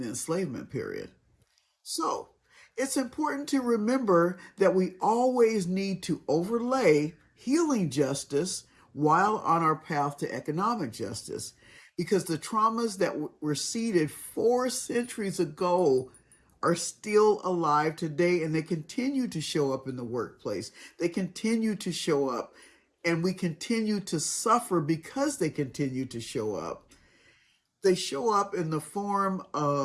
enslavement period. So, it's important to remember that we always need to overlay healing justice while on our path to economic justice, because the traumas that were seeded 4 centuries ago are still alive today, and they continue to show up in the workplace. They continue to show up, and we continue to suffer because they continue to show up. They show up in the form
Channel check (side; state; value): both; identical; correlation 1.00